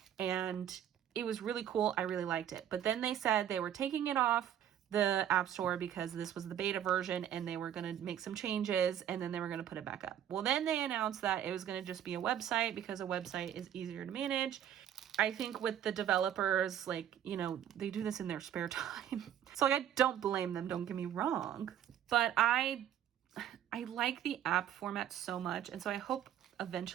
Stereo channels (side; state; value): left; quieter; 10.4 dB